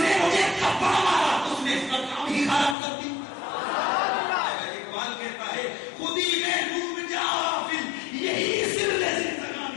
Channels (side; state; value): right; drops out; at 2.8 s